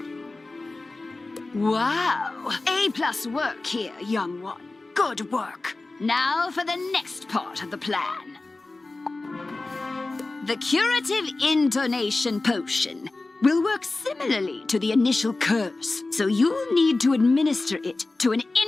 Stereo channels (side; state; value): right; quieter; 3.2 dB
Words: Wow! A+ work here, young one. Good work. Now for the next part of the plan. The curative intonation potion will work similarly to the initial curse, so you'll need to administer it to an